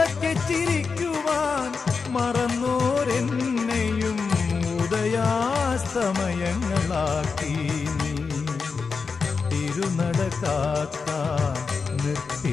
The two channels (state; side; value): quieter; right; 5.0 dB